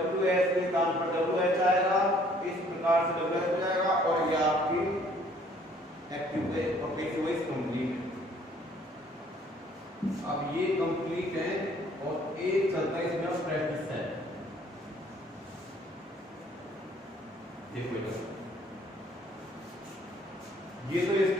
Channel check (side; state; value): both; normal; correlation 0.60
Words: के स्थान पर WH आएगा इस प्रकार से WS हो जाएगा और ये आपकी एक्टिव है और पैसिव वॉइस कंप्लीट है अब ये कंप्लीट है और एक चलता है इसमें प्रैक्टिस है देखो ये तो